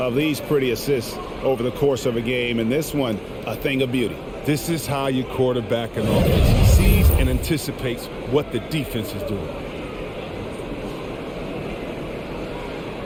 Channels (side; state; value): both; identical; correlation 1.00